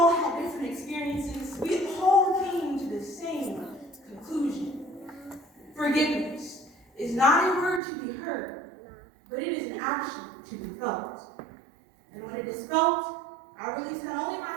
had different experiences, we all came to the same conclusion. Forgiveness is not a word to be heard, but it is an action to be felt. And when it is felt, I release not only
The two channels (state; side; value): drops out; left; at 7.8 s